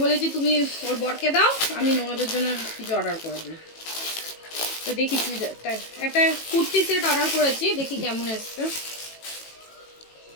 বলেছি তুমি ওর বরকে দাও, আমি ননদের জন্য কিছু অর্ডার করে দিই। তো দেখি চুড়িদারটা, একটা কুর্তি সেট অর্ডার করেছি, দেখি কেমন এসছে।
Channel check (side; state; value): right; late; 18 ms